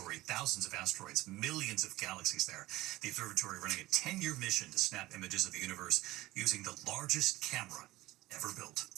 thousands of asteroids, millions of galaxies there. The observatory running a 10-year mission to snap images of the universe using the largest camera ever built.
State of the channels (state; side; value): quieter; left; 17.9 dB